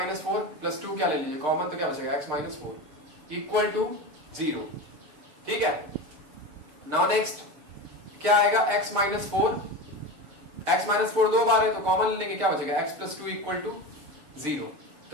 4 प्लस 2 क्या ले लीजिए, कॉमन तो क्या बचेगा, x माइनस 4 इक्वल टू 0। ठीक है, नाउ नेक्स्ट क्या आएगा, x माइनस 4, x माइनस 4 दो बार है तो कॉमन ले लेंगे, क्या बचेगा, x प्लस 2 इक्वल टू 0।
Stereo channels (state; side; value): late; left; 6.5 ms